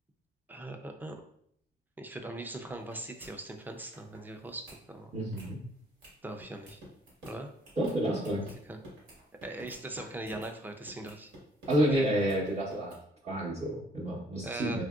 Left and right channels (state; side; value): normal; both; correlation 0.62